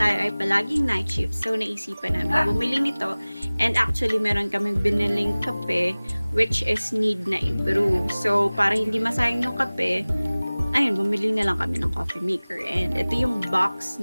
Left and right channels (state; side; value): inverted; both; correlation -0.99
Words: ay palaging night shift, so naisipan namin bumili nito. And actually meron kaming biniling kape which is need na i-brew. So para hindi masayang yung kape, ayun, bumili na lang kami ng coffee maker. And ito yung box